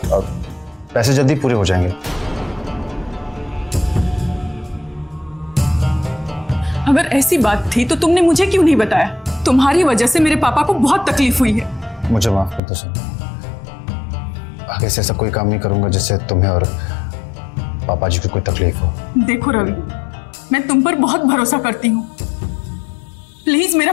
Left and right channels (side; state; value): right; drops out; at 12.6 s